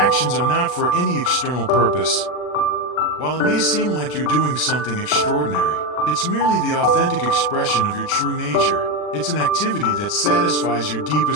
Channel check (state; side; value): late; right; 40 ms